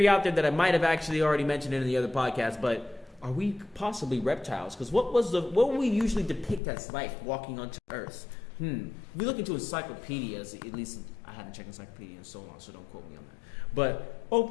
out there that I might have actually already mentioned in the other podcast, but are we possibly reptiles? Because what would we usually depict as life walking onto Earth? If we look into encyclopedias, at least I haven't checked encyclopedia in so long, so don't quote me on that. But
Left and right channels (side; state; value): right; drops out; at 6.6 s